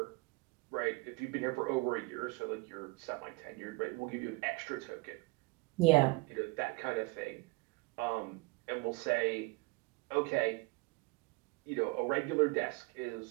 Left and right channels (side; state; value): left; quieter; 25.4 dB